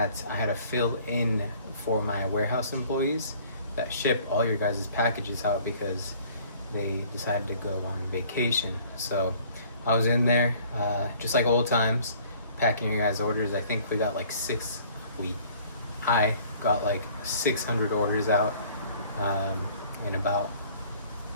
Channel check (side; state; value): both; inverted; correlation -0.54